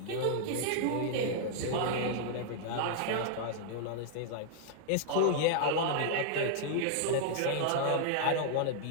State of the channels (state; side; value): different; both; correlation -0.01